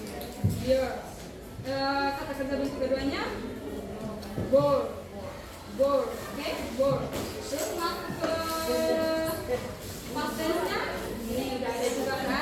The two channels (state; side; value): identical; both; correlation 1.00